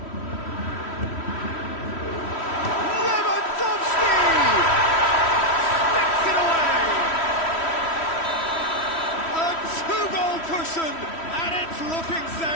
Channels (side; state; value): right; late; 3.1 ms